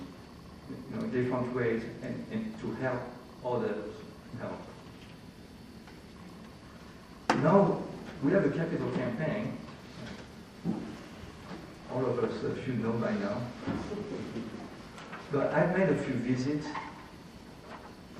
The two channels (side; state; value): both; identical; correlation 1.00